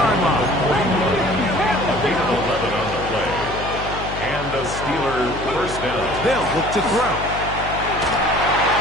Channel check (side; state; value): left; noise; hum, 9 dB below the sound